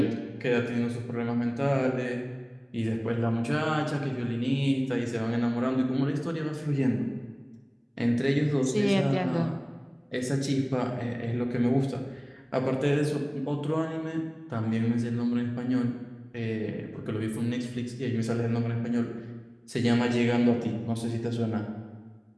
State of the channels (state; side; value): identical; both; correlation 1.00